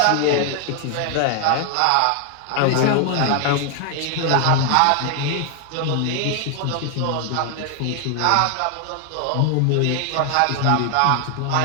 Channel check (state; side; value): different; both; correlation 0.00